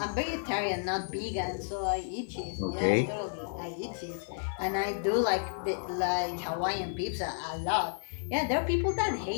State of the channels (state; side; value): silent; right; 57 dB below the other